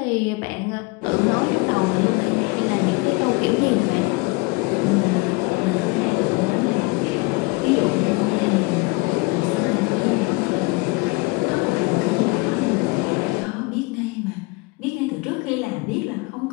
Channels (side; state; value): right; quieter; 25.6 dB